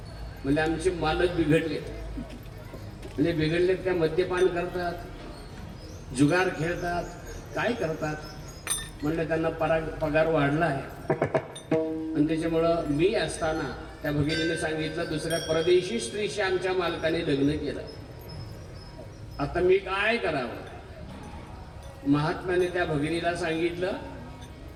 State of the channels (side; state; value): both; identical; correlation 1.00